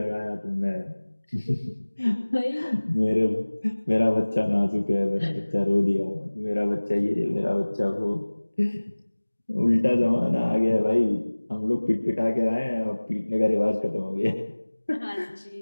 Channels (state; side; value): inverted; both; correlation -1.00